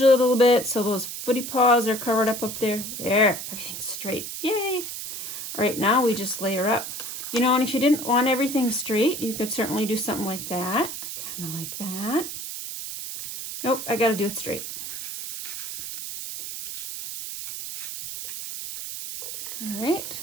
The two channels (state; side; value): noise; right; hiss, 7 dB below the sound